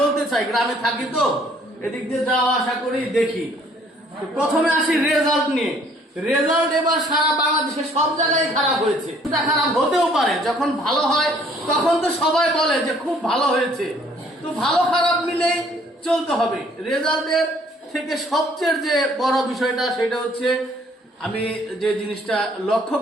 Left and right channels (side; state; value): both; normal; correlation 0.60